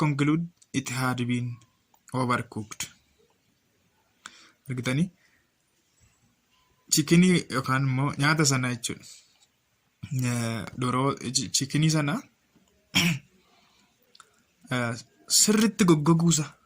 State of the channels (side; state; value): both; identical; correlation 1.00